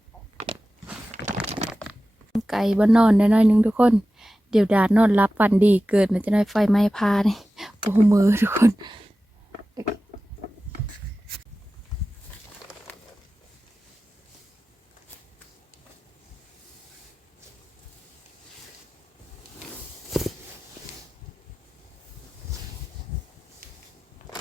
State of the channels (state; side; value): normal; both; correlation 0.95